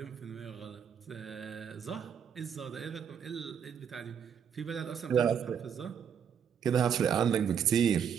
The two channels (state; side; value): quieter; left; 7.8 dB